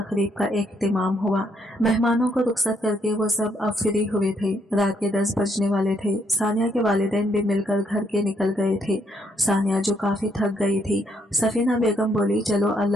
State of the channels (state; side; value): normal; both; correlation 0.73